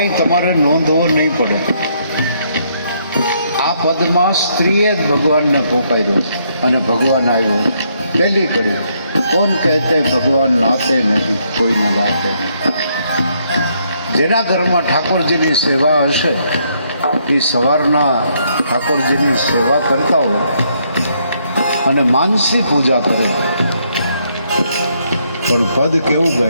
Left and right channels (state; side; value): inverted; both; correlation -0.73